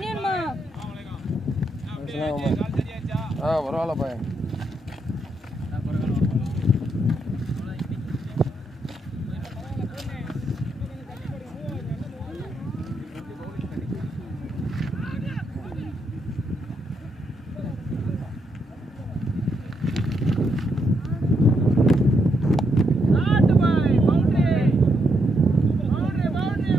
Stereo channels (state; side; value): normal; both; correlation 0.79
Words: வேணுமா? பரவாயில்ல பையன்.